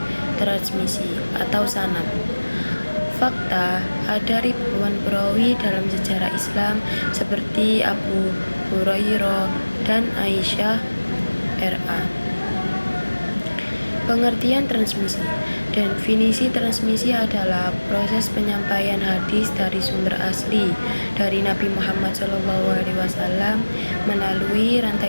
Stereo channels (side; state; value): both; inverted; correlation -1.00